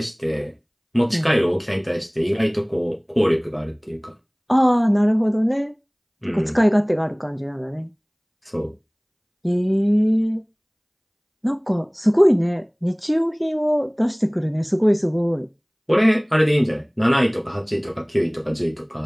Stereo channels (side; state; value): both; identical; correlation 1.00